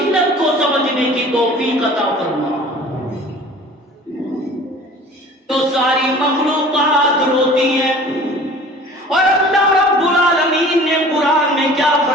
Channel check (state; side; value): normal; both; correlation 0.45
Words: کو سمجھنے کی توفیق عطا فرما۔ تو ساری مخلوقات روتی ہے، اور اللہ رب العالمین نے قرآن میں کیا